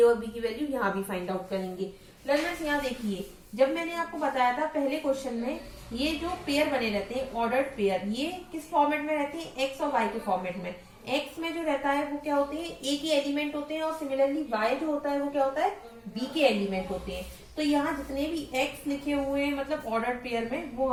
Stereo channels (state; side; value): identical; both; correlation 1.00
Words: और B की वैल्यू यहाँ भी फाइंड आउट करेंगे। लर्नर्स यहाँ देखिए, जब मैंने आपको बताया था पहले क्वेश्चन में ये जो पेयर बने रहते हैं ऑर्डर्ड पेयर, ये किस फॉर्मेट में रहते हैं x और y के फॉर्मेट में। x में जो रहता है वो क्या होते हैं A के एलिमेंट होते हैं और सिमिलरली y जो होता है वो क्या होता है B के एलिमेंट होते हैं। तो यहाँ जितने भी x लिखे हुए हैं मतलब ऑर्डर्ड पेयर में वो